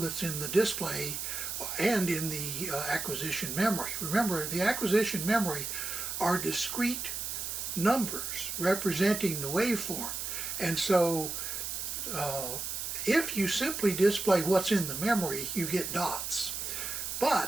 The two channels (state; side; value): noise; right; hiss, 4 dB below the sound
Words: in the display and in the acquisition memory. Remember, the acquisition memory are discrete numbers representing the waveform. And so if you simply display what's in the memory, you get dots.